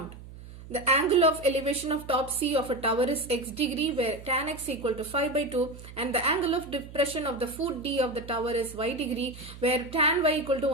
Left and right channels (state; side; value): noise; right; hum, 16 dB below the sound